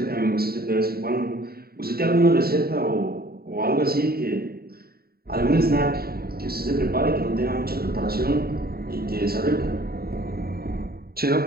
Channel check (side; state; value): left; late; 0.45 ms